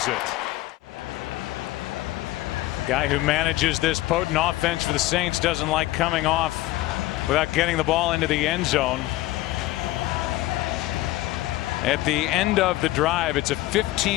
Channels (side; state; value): right; quieter; 17.1 dB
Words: it. Guy who manages this potent offense for the Saints doesn't like coming off without getting the ball into the end zone. At the end of the drive, it's a